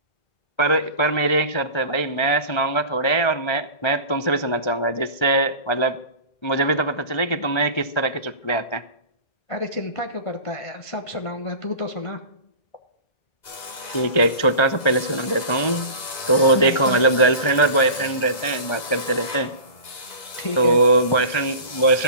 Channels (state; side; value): late; right; 1.3 ms